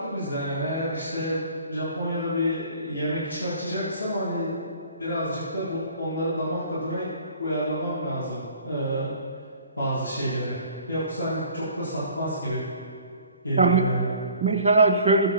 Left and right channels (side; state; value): both; inverted; correlation -0.51